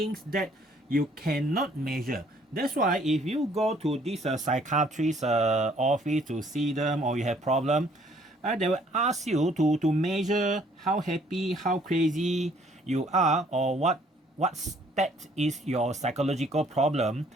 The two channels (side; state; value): both; normal; correlation 0.62